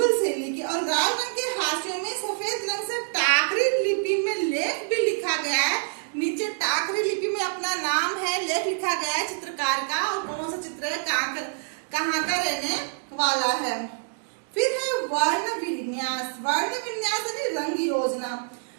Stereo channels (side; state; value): left; silent; digital silence